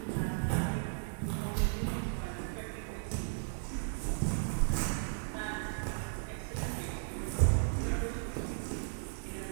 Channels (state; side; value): silent; left; digital silence